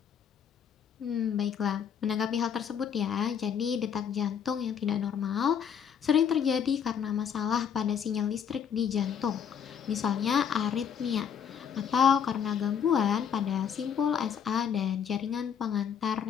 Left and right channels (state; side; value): quieter; right; 7.8 dB